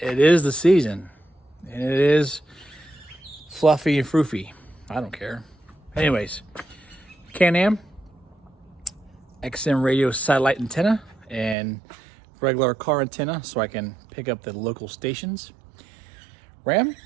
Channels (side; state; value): left; drops out; at 11.6 s